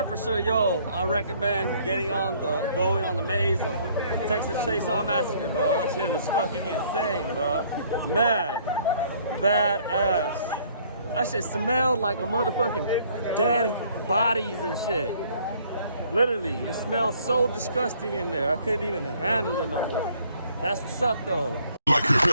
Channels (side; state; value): both; inverted; correlation -0.61